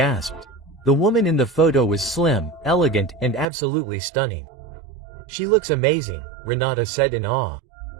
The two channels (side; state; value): left; drops out; at 3.5 s